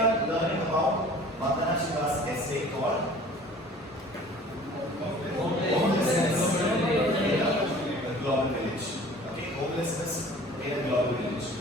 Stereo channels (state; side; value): normal; both; correlation 0.47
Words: learning about Vandana Shiva's essay called Homelessness in a Global Village. Okay, homelessness in a global village.